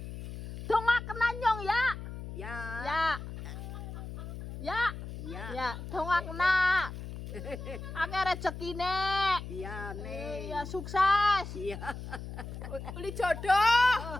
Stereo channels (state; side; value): noise; left; hum, 9 dB below the sound